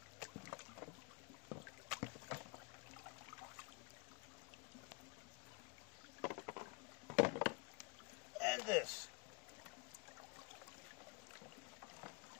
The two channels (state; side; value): quieter; right; 30.6 dB